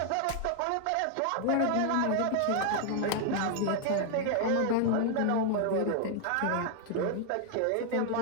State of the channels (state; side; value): different; both; correlation 0.00